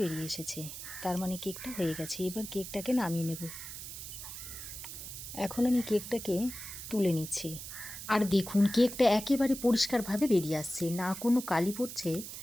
এসেছে, তার মানে কেকটা হয়ে গেছে। এবার কেকটাকে নামিয়ে নেব। এখন আমি কেকটাকে তুলে নিচ্ছি। আর দেখুন, কেকটা একেবারে পরিষ্কারভাবে বেরিয়ে আসছে, না কোনো কালি পড়ছে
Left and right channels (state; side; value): noise; right; hiss, 10 dB below the sound